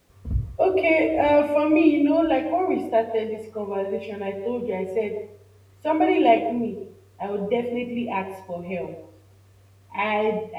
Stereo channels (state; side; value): identical; both; correlation 1.00